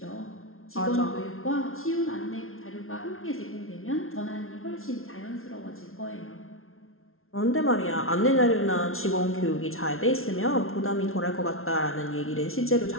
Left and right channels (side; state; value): right; late; 0.62 ms